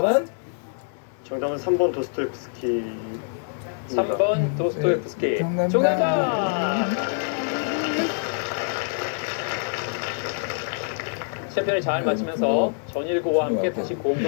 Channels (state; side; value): silent; right; 62 dB below the other